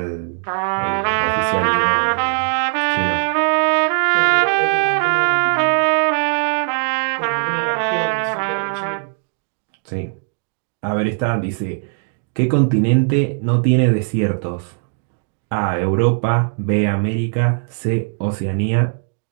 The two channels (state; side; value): silent; left; digital silence